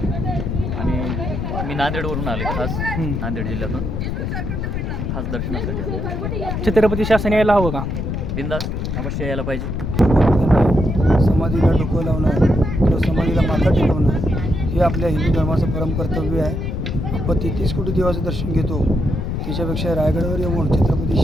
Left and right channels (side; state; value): left; noise; rumble, 2 dB below the sound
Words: आणि मी नांदेडवरून आले, खास नांदेड जिल्ह्यातून, खास दर्शनासाठी आलो. छत्रपती शासन यायला हवं का? बिंदास अवश्य यायला पाहिजे. समाधीला डोकं लावणं किंवा समाधीला माथा टेकवणं हे आपल्या हिंदू धर्माचं परमकर्तव्य आहे. आपण 33 कोटी देवाचं दर्शन घेतो, त्याच्यापेक्षा रायगडावर येऊन छत्रपती